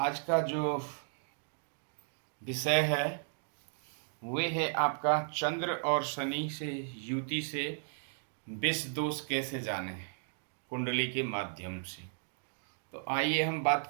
का जो विषय है वे है आपका चंद्र और शनि से युति से विष दोष कैसे जाने कुंडली के माध्यम से। तो आइए हम बात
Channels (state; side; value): silent; left; digital silence